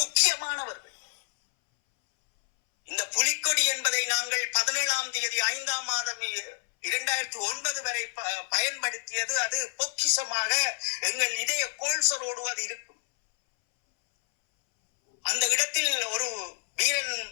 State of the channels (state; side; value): silent; right; 59 dB below the other